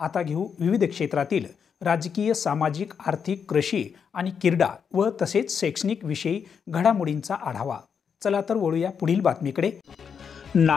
घेऊ विविध क्षेत्रातील राजकीय, सामाजिक, आर्थिक, कृषी आणि क्रीडा व तसेच शैक्षणिक विषयी घडामोडींचा आढावा. चला तर वळूया पुढील बातमीकडे.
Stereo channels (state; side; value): quieter; right; 6.8 dB